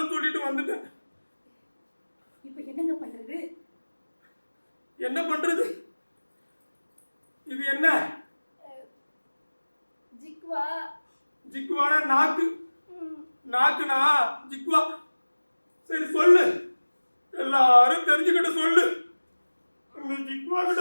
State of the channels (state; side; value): inverted; both; correlation -1.00